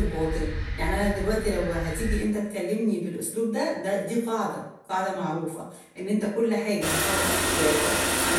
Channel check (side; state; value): both; identical; correlation 1.00